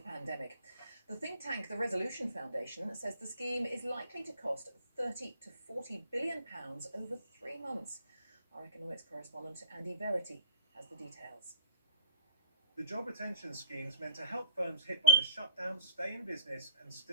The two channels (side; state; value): both; inverted; correlation -0.59